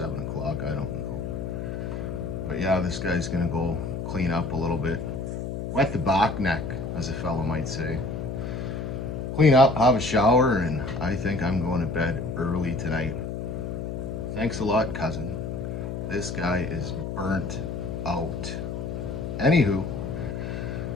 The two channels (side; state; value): left; noise; hum, 4 dB below the sound